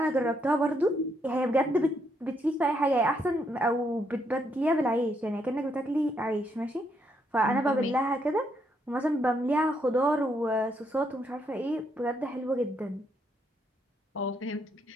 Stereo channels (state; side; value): normal; both; correlation 0.75